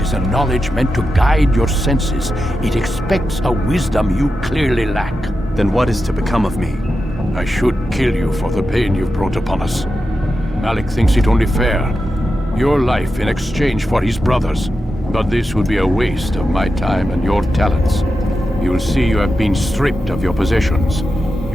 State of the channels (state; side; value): normal; both; correlation 0.90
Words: is a knowledge meant to guide your senses. It expects a wisdom you clearly lack. Then what is to become of me? I should kill you for the pain you've brought upon us. Malik thinks it only fair. Your life in exchange for his brother's. But this would be a waste of my time and your talents. You will see you have been stripped of your possessions.